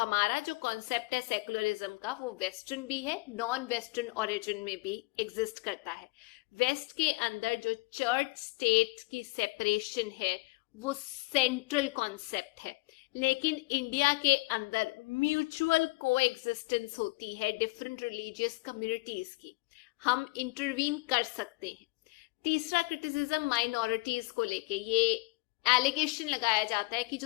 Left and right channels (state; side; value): quieter; right; 24.8 dB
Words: जो कॉन्सेप्ट है सेकुलरिज्म का वो वेस्टर्न भी है, नॉन वेस्टर्न ओरिजिन में भी एग्जिस्ट करता है। वेस्ट के अंदर जो चर्च स्टेट की सेपरेशन है वो सेंट्रल कॉन्सेप्ट है, लेकिन इंडिया के अंदर म्यूचुअल कोएग्जिस्टेंस होती है डिफरेंट रिलीजियस कम्युनिटीज की। हम इंटरवीन कर सकते हैं। तीसरा क्रिटिसिज्म माइनॉरिटीज को लेके, ये एलिगेशन लगाया जाता है कि